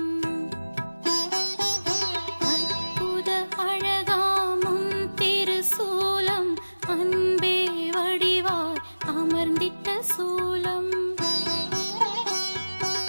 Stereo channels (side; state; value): both; inverted; correlation -1.00